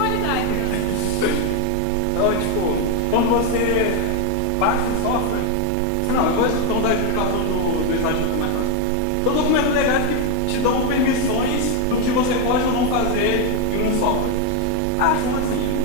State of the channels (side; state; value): both; different; correlation 0.01